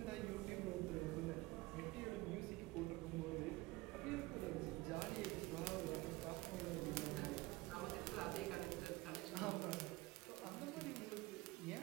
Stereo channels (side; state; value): left; quieter; 21.0 dB